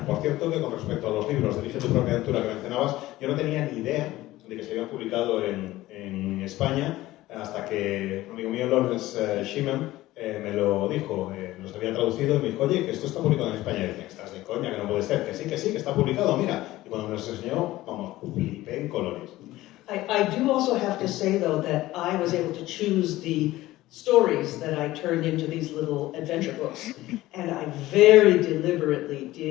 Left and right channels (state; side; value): quieter; right; 16.8 dB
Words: Por cierto, que con respecto a los libros de Elige tu propia aventura que mencionabas, yo no tenía ni idea de que se habían publicado en España, hasta que un amigo mío, Lawrence Schimmel, me lo dijo, los había traducido y me dijo, oye, que esto está publicado en España. Y dije, estás de coña, que no puede ser, que sí, que está publicado, mira. Y cuando me los enseñó, vamos, flipé en colores. I do also have to say, though, that I was able to choose the stories that I turned into these little adventure books. And I very deliberately